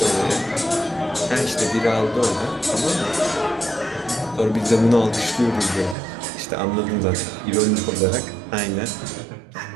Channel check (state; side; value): drops out; left; at 6.0 s